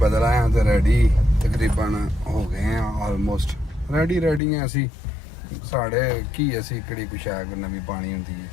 ਆਇਆ ਤੇ ਰੈਡੀ ਤਕਰੀਬਨ ਹੋ ਗਏ ਆ, ਆਲਮੋਸਟ ਰੈਡੀ ਆ ਅਸੀਂ। ਸਾਡੇ ਕੀ ਅਸੀਂ ਕਿਹੜੀ ਕੁਛ ਹੈ ਕੋਈ ਨਵੀਂ ਪਾਣੀ ਹੁੰਦੀ ਹੈ।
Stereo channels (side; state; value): right; drops out; at 4.4 s